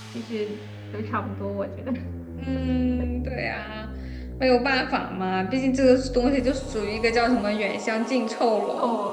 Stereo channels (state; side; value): identical; both; correlation 1.00